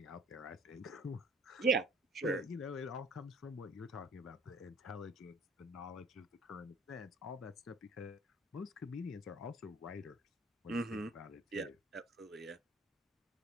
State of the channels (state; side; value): normal; both; correlation 0.51